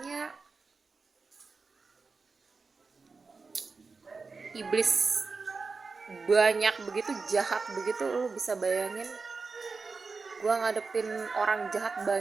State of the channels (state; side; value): quieter; left; 4.4 dB